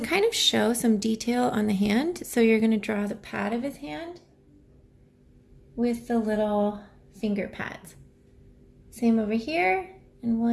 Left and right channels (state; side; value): identical; both; correlation 1.00